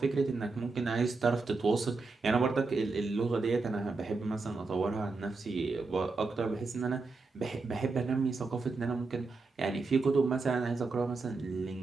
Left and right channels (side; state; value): left; quieter; 3.9 dB